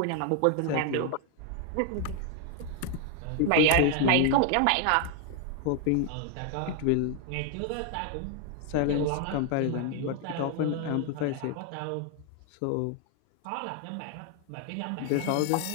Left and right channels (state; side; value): different; both; correlation 0.00